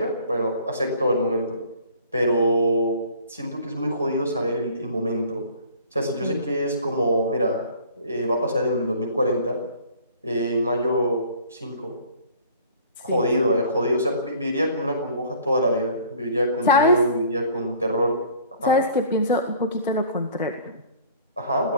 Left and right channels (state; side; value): inverted; both; correlation -0.51